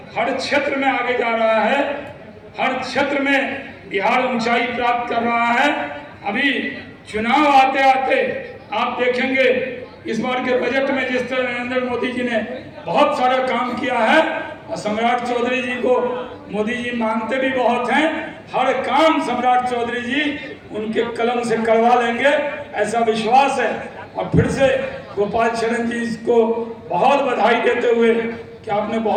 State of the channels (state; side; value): identical; both; correlation 1.00